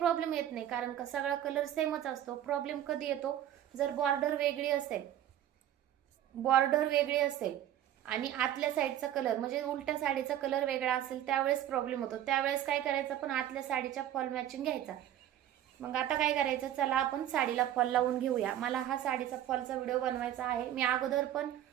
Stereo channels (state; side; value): quieter; left; 11.7 dB